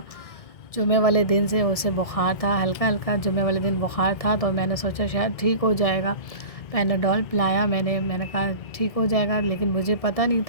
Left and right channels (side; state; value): right; late; 1.6 ms